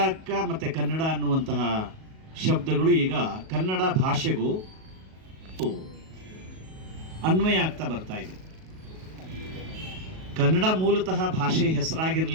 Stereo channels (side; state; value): left; late; 38 ms